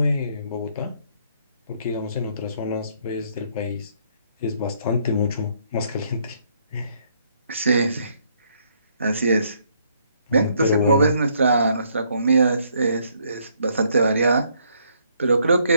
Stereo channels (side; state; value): both; inverted; correlation -0.69